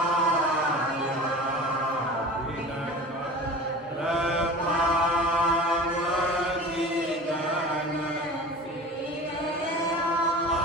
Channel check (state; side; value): normal; both; correlation 0.37